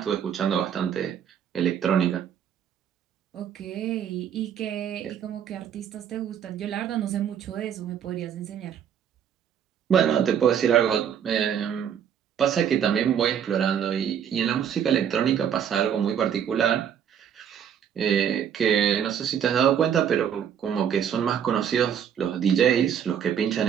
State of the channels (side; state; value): left; quieter; 8.7 dB